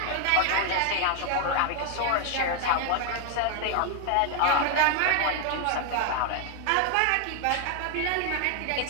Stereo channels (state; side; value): different; both; correlation 0.00